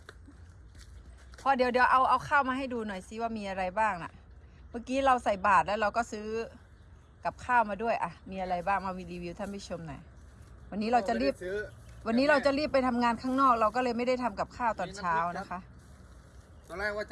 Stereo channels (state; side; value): identical; both; correlation 1.00